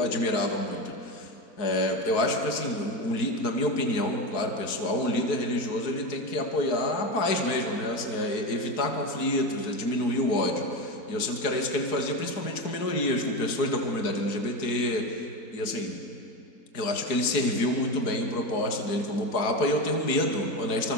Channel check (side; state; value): right; late; 4.6 ms